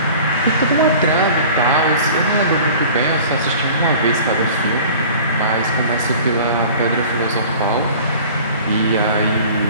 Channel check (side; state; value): both; inverted; correlation -0.44